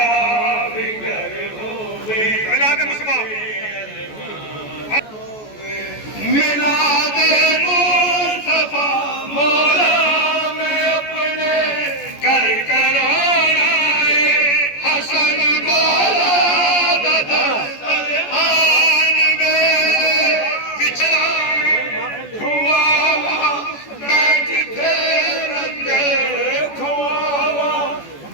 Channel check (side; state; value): right; late; 14 ms